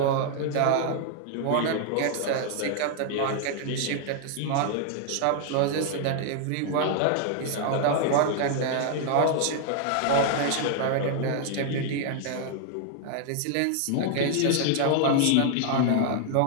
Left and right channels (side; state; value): both; different; correlation 0.00